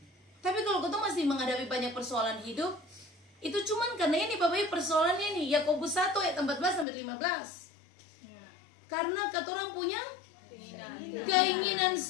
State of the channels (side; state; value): right; drops out; at 6.9 s